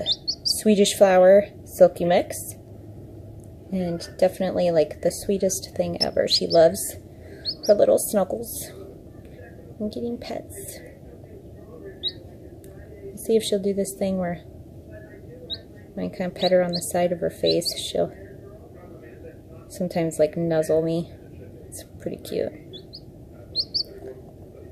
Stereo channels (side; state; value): both; identical; correlation 1.00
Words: Swedish flower silky mix, and definitely like the sweetest thing ever. She loves her little snuggles and getting pets. Let's see if she'll do this thing where when I kind of pet her on the side of her face, she'll sometimes like nuzzle me. It's pretty cute.